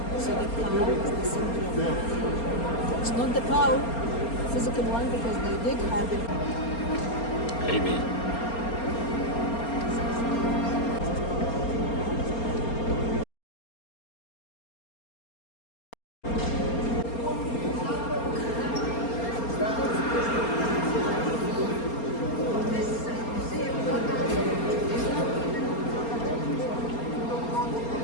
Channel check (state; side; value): late; right; 4.3 ms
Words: So the cow is the symbol of life. It's not the cow, physical one, because they did have it. Maybe.